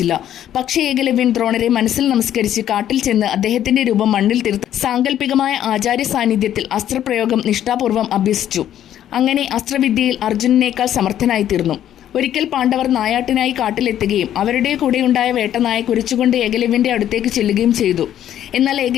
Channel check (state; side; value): quieter; right; 11.1 dB